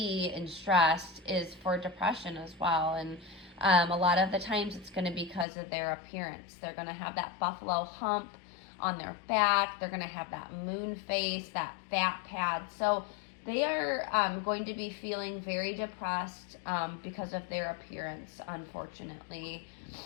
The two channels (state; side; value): drops out; right; at 5.5 s